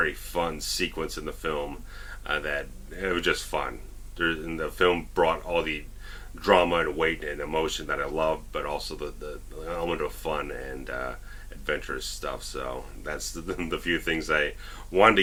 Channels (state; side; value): identical; both; correlation 1.00